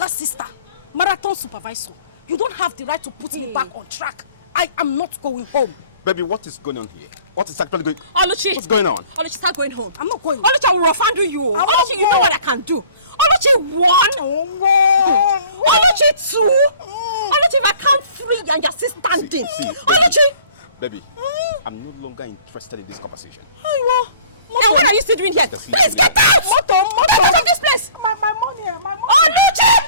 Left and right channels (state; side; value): inverted; both; correlation -0.51